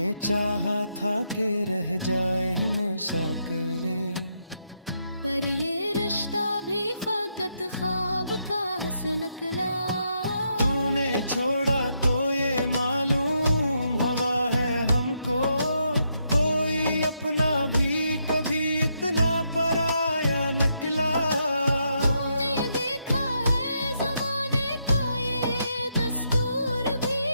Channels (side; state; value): both; inverted; correlation -0.79